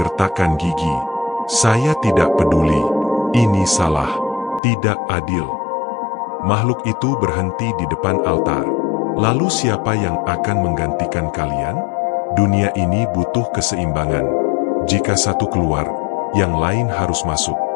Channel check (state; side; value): drops out; right; at 4.6 s